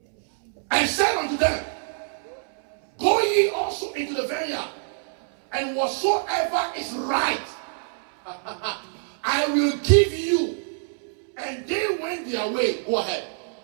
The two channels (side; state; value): left; silent; 62 dB below the other